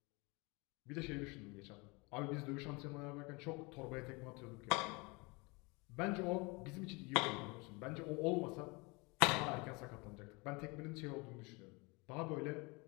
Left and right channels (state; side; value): quieter; right; 27.4 dB